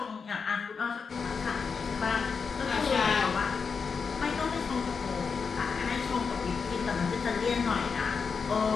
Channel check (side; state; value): right; quieter; 5.5 dB